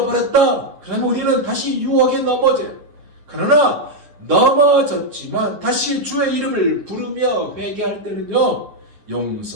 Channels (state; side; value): late; left; 9.9 ms